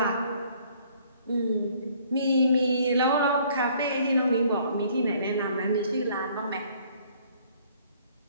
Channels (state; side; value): inverted; both; correlation -0.60